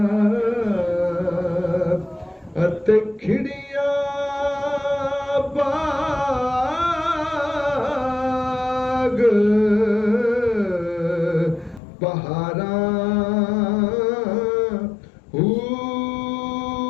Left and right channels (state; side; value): drops out; right; at 11.8 s